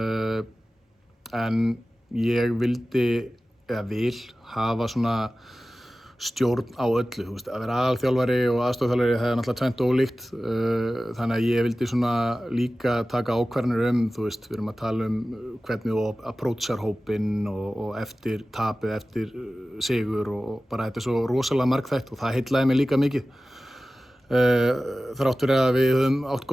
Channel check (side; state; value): both; normal; correlation 0.96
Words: En ég vildi, eða vil, hafa svona stjórn á öllu, þú veist, að vera aðalþjálfari og aðstoðarþjálfari það er náttúrulega tvennt ólíkt, þannig að ég vildi svona líka taka ákvarðanir þú veist, við erum að tala hvernig þú approachar hópinn og eftir tapið, eftir sigur og bara þetta er svo rosalega margþætt og það heillaði mig líka mikið. Þrátt fyrir að við höfum átt